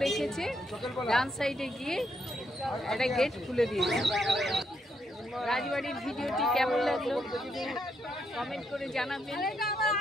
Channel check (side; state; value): both; normal; correlation 0.78